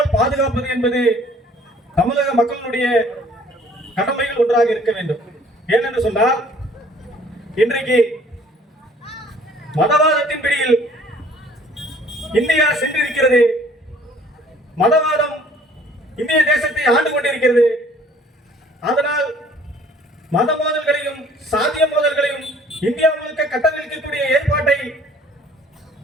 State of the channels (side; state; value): both; normal; correlation 0.55